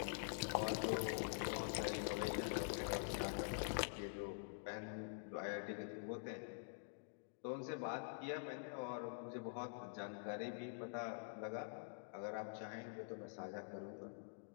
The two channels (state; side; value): silent; right; digital silence